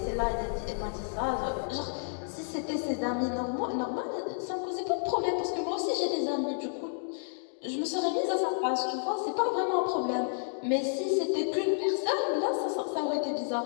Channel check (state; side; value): silent; right; digital silence